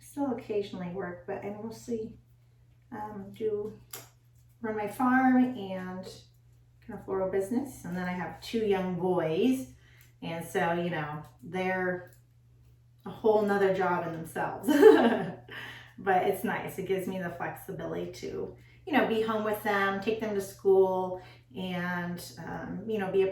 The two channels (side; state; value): both; identical; correlation 1.00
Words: still occasionally work, but I mostly do run my farm and kind of floral business. And then I have 2 young boys. And so, you know, they're a whole nother job in themselves. But it's nice. It gives me the flexibility to, you know, be home with them, take them to school, and, you know, be a